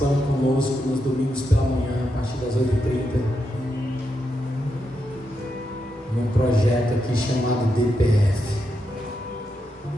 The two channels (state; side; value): normal; both; correlation 0.84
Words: conosco nos domingos pela manhã, a partir das 8h30, num projeto aqui chamado DPF,